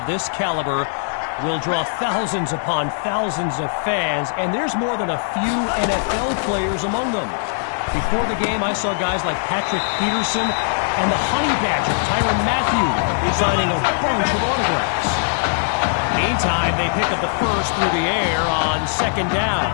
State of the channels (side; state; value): right; silent; 59 dB below the other